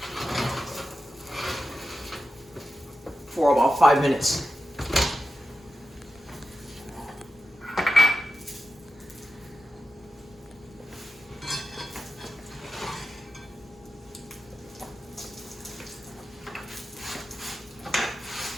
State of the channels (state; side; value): normal; both; correlation 0.91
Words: for about 5 minutes.